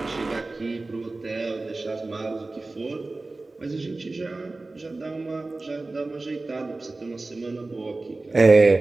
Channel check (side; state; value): left; quieter; 3.3 dB